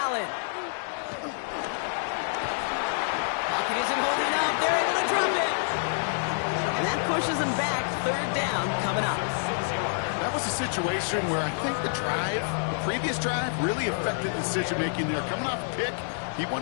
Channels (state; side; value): silent; right; digital silence